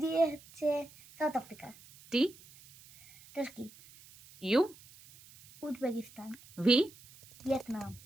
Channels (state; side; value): noise; right; hiss, 23 dB below the sound